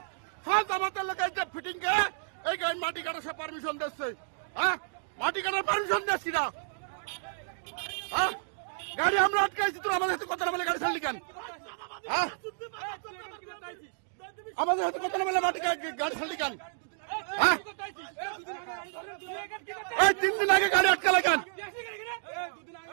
সব জামাতের লোক ফিটিং কে এই মাটি কাটার সব পারমিশন দিচ্ছে, হ্যাঁ মাটি কাটার পারমিশন দিচ্ছি না, হ্যাঁ গাড়ি আমরা আটকাইছি, তোর আমাদের সাথে কথা না বলে গাড়ি ছাড়লি কেন, হ্যাঁ আমাদের সাথে কথা না বলে মাটি গাড়ি ছাড়লি কেন, হ্যাঁ এই 3 দিন আগে গাড়ি আটকালে কেন,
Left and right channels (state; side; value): silent; left; digital silence